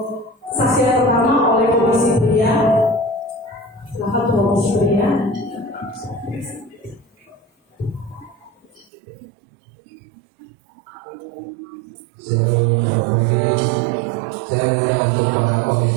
saksi yang pertama oleh Komisi Pria. Silakan Komisi Pria. Saya mengundang untuk para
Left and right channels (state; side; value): drops out; left; at 8.9 s